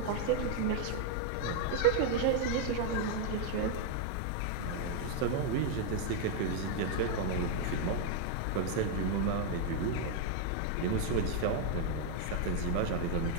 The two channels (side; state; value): both; different; correlation 0.00